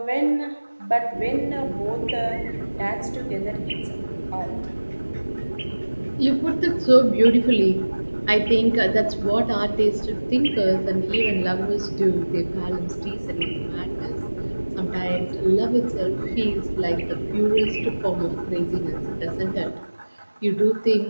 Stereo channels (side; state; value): both; inverted; correlation -1.00